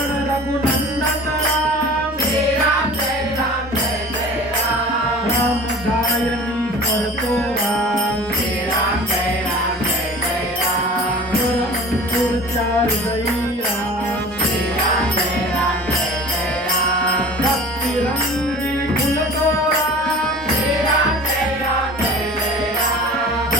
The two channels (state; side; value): normal; both; correlation 0.41